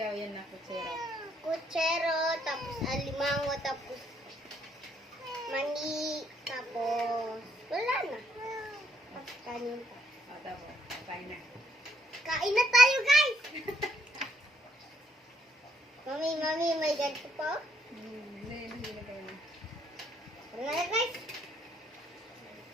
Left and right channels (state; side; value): normal; both; correlation 0.72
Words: yan na, kutsero. Kutsero, tapos alimango, tapos mani, tapos wala na. Tapos kanin pa. O, tapos, kain na. Kain na tayo, guys! Mami, may ganito pa? Hindi na kain na. Ano na, guys?